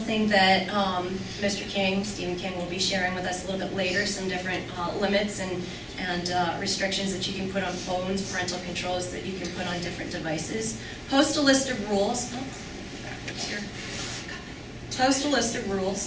that Mr. King, Stephen King, will be sharing with us a little bit later, some different limits and restrictions that you can put on phones, parental controls that you can put on different devices. Post a list of rules. Backwards here. Post a list of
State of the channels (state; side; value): identical; both; correlation 1.00